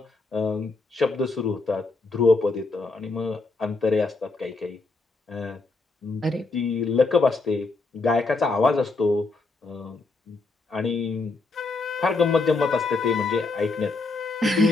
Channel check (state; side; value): quieter; right; 3.6 dB